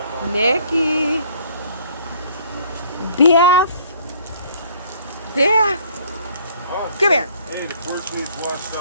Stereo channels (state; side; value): inverted; both; correlation -0.58